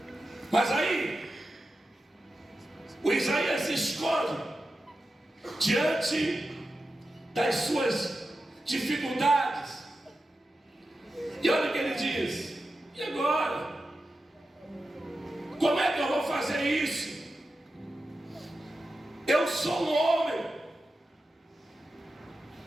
Mas aí, o Isaías se esconde diante das suas dificuldades. E olha o que ele diz: e agora? Como é que eu vou fazer isso? Eu sou um homem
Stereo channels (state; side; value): normal; both; correlation 0.91